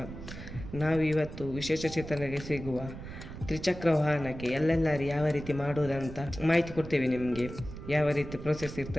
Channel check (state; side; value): noise; right; rumble, 11 dB below the sound